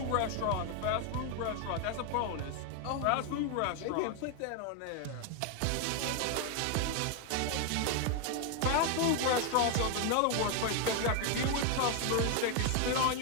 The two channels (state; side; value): different; both; correlation 0.01